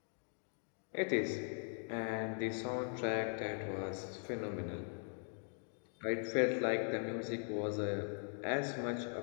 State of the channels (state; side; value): silent; right; 51 dB below the other